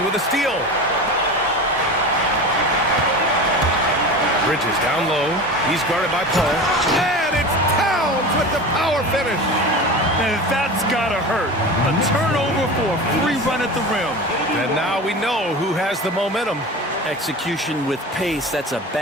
with a steal. Bridges down low. He's guarded by Paul. And it's Towns with the power finish. And that's gotta hurt. A turnover for a free run at the rim. And now we know who has the momentum. Execution with pace, that's a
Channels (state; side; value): normal; both; correlation 0.31